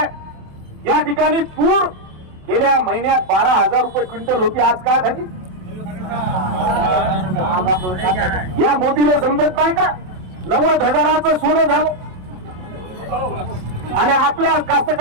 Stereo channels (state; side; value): late; left; 27 ms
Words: या ठिकाणी तूर गेल्या महिन्यात 12000 रुपये क्विंटल होती, आज काय झाली? या मोदीला समजत नाही का? 90,000चं सोनं झालं आणि आपल्या